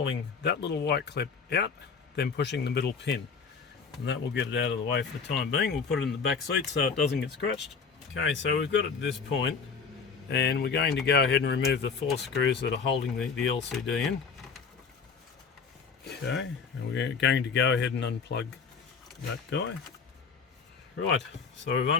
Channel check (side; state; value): right; quieter; 5.5 dB